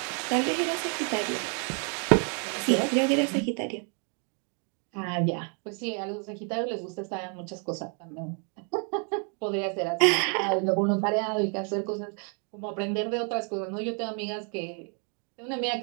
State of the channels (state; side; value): quieter; left; 40.0 dB